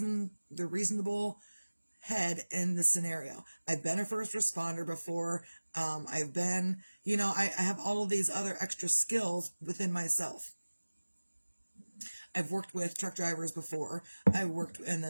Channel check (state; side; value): inverted; both; correlation -1.00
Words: head in the scenario. I've been a first responder before. I've been, I have all of these other extra skills within myself. I've worked with truck drivers before. I worked in